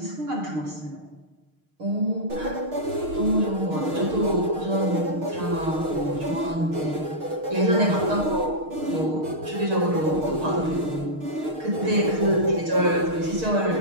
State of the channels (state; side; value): late; left; 6.5 ms